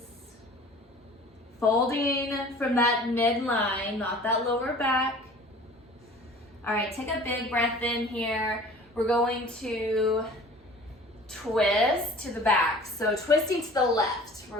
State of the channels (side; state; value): both; normal; correlation 0.45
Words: Folding from that midline, not that lower back. All right, take a big breath in here. We're going to twist to the back. So twisting to the left.